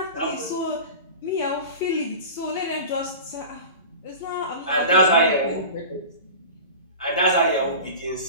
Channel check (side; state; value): both; inverted; correlation -0.33